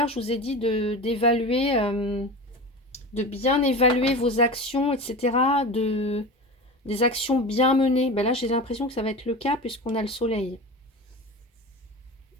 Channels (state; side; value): normal; both; correlation 0.29